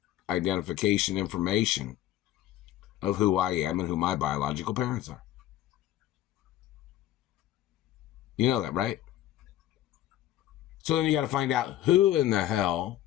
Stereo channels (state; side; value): quieter; right; 13.1 dB